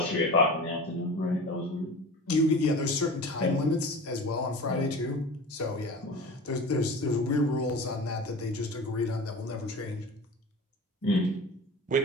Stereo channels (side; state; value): both; normal; correlation 0.35